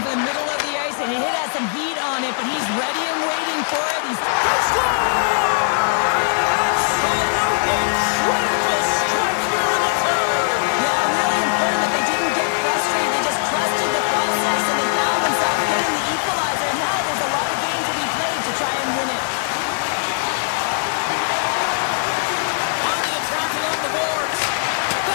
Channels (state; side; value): silent; right; digital silence